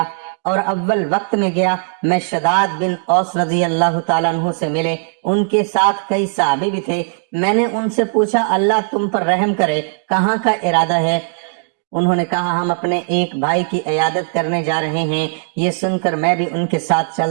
اور اول وقت میں گیا، میں شداد بن اوس رضی اللہ تعالیٰ عنہ سے ملے۔ ان کے ساتھ کئی صحابی بھی تھے۔ میں نے ان سے پوچھا، اللہ تم پر رحم کرے، کہاں کا ارادہ ہے؟ انہوں نے کہا، ہم اپنے ایک بھائی کی عیادت کرنے جا رہے ہیں۔ یہ سن کر میں بھی ان کے ساتھ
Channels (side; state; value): left; silent; digital silence